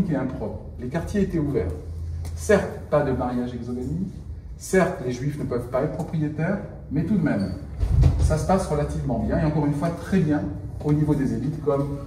et impropre. Les quartiers étaient ouverts. Certes, pas de mariage exogamique, certes, les juifs ne peuvent pas être propriétaires, mais tout de même, ça se passe relativement bien, et encore une fois, très bien au niveau des élites, comme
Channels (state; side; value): identical; both; correlation 1.00